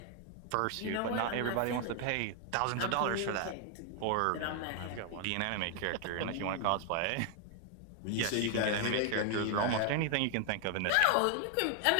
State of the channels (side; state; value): both; different; correlation 0.00